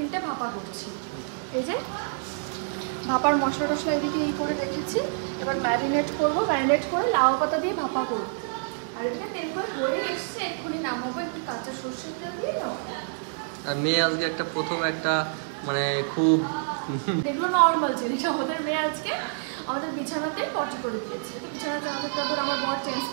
ভাপা করছি। এই যে ভাপার মশলা টশলা এদিকে এই করে রেখেছি। এবার ম্যারিনেট করবো, ম্যারিনেট করে লাউ পাতা দিয়ে ভাপা করবো। আর এদিকে তেল কই হয়ে এসছে, এক্ষুনি নামাবো। একটু কাঁচা সর্ষের তেল দিয়ে নাও। আর মেয়ে আজকে একটা প্রথম একটা মানে খুব দেখবো নর্মাল জিনিস। আমাদের মেয়ে আজকে আমাদের বিছানাতে পটি করে দিয়েছে। তো বিছানাতে আমার বর চেঞ্জ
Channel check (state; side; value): silent; left; 55 dB below the other